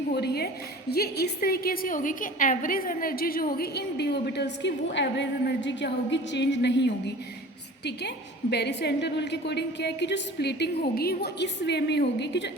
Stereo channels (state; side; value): normal; both; correlation 0.42